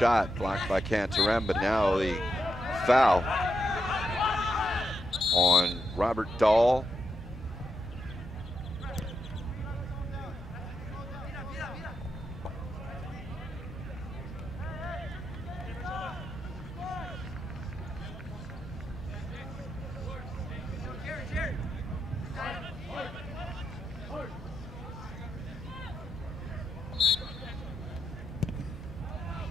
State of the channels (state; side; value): normal; both; correlation 0.85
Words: blocked by Cantarem, but now the foul on Robert Dahl.